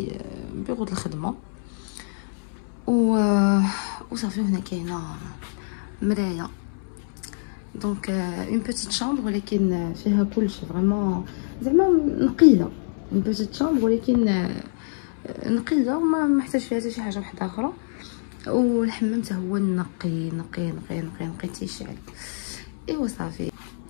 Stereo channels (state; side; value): silent; right; 62 dB below the other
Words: بيرو الخدمه وصافي. هنا كاينه مرايه. دونك اون بيتيت شامبر ولكن فيها كلشي فريمون زعما نقيه. اون بيتيت شامبر ولكن نقيه وما محتاج فيها حتى شي حاجه واحده اخرى. والحمام حتى هو نقي نقي نقي نقي نقي تيشعل. ايوا صافي